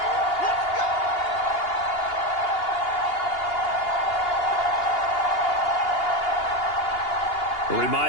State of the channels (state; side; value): late; right; 2.8 ms